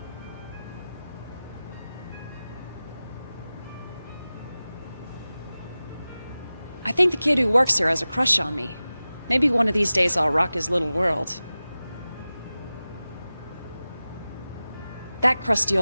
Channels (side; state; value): both; inverted; correlation -0.96